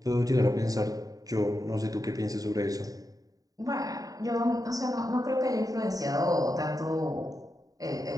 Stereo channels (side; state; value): left; late; 0.18 ms